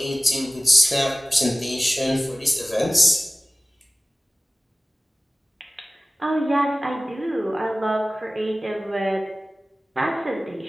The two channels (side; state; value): both; normal; correlation 0.97